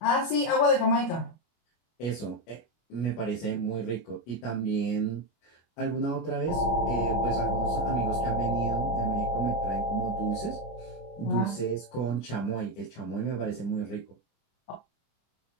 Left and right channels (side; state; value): right; late; 25 ms